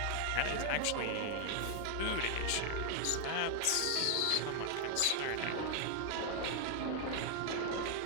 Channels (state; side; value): different; both; correlation 0.00